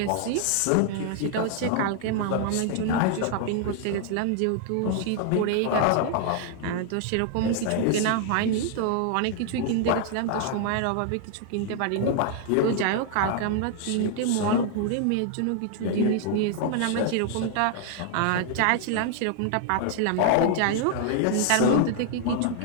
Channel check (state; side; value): different; both; correlation 0.00